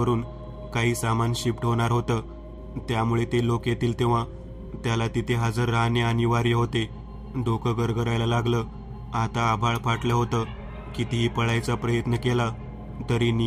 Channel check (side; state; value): both; identical; correlation 1.00